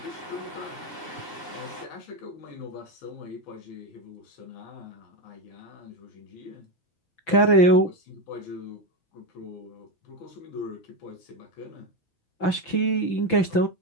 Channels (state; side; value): late; right; 6.0 ms